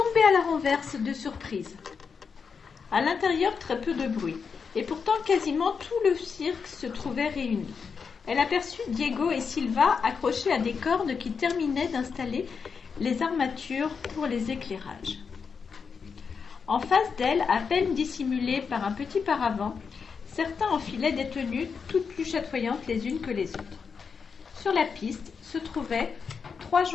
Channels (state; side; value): quieter; right; 5.8 dB